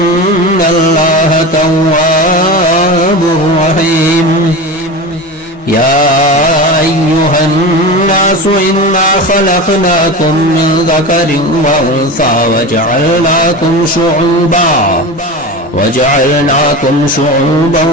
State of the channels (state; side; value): normal; both; correlation 0.27